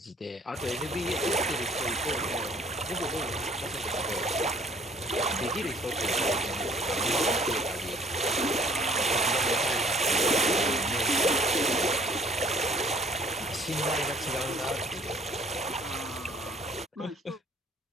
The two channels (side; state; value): both; normal; correlation 0.57